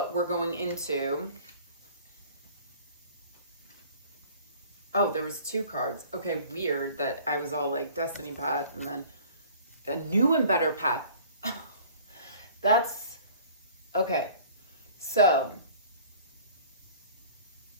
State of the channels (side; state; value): both; inverted; correlation -0.49